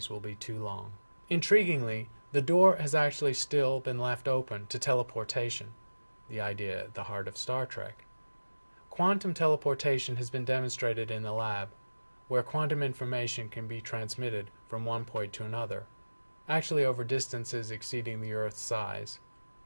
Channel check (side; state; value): both; inverted; correlation -1.00